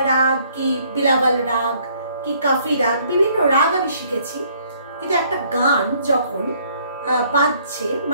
राग की बिलावल राग की काफी राग विभिन्न राग आमि शिखेछि, किन्तु एकटा गान जखन बाजছে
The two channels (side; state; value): both; inverted; correlation -0.63